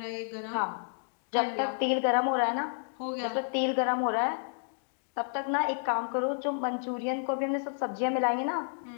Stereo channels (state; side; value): silent; right; digital silence